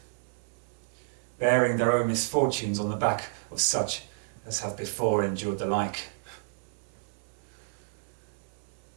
bearing their own misfortunes on the back of such as have before endured the like.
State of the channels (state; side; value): silent; left; 57 dB below the other